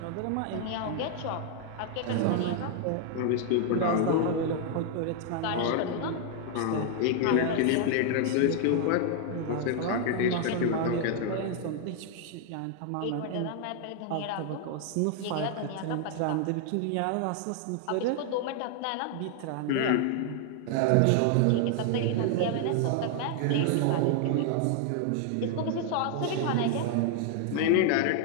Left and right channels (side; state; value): both; different; correlation 0.00